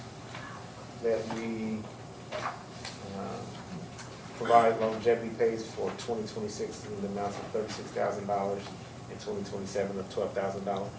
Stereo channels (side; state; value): both; identical; correlation 1.00